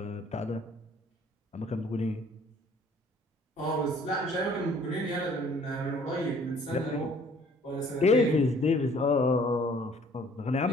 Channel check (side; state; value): both; normal; correlation 0.57